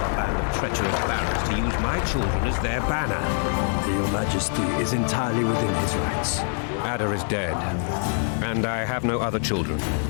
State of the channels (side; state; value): right; silent; 56 dB below the other